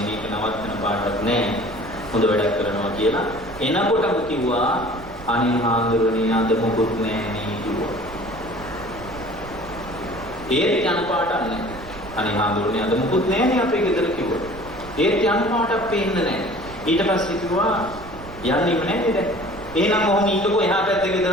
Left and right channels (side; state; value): right; noise; rumble, 16 dB below the sound